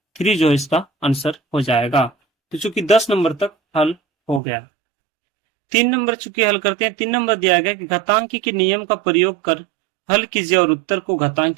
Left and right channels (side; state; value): left; drops out; at 4.4 s